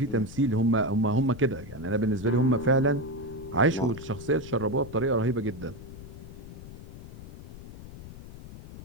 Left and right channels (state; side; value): noise; left; rumble, 14 dB below the sound